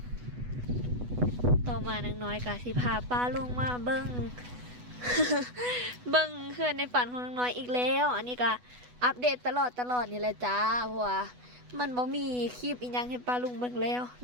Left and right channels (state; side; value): late; left; 8.1 ms